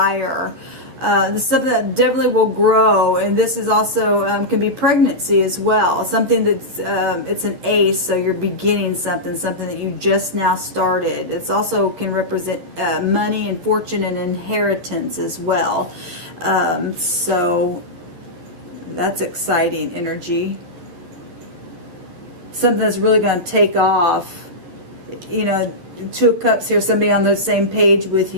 This is something that definitely will grow, and this is also can be pregnancy as well. Something that's it's an ace, so you're beginning something that you just now started. It's also can represent money and fortune and inheritance as well. So that's exciting energy. Something that's really going to take off. You know, Two of Cups here, somebody on the same page with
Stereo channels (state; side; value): late; left; 11 ms